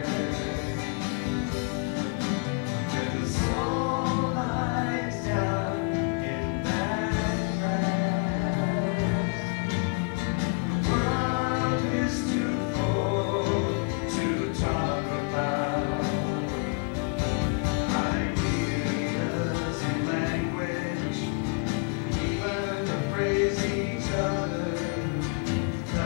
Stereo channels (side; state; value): right; quieter; 34.5 dB